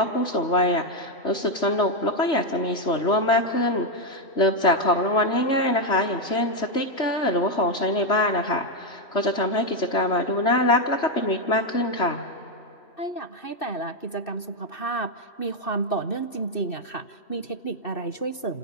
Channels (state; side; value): late; right; 2.6 ms